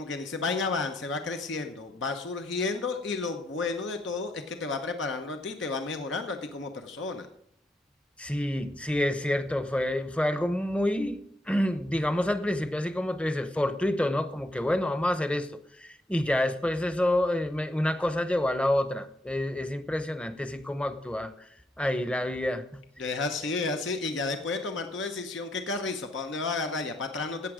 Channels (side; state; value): both; normal; correlation 0.77